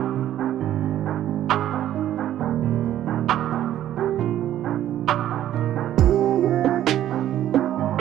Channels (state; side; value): quieter; left; 12.1 dB